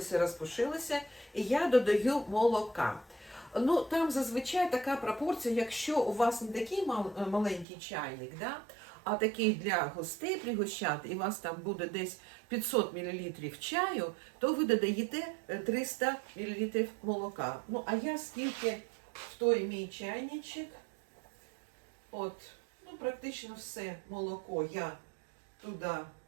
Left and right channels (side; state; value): left; drops out; at 7.7 s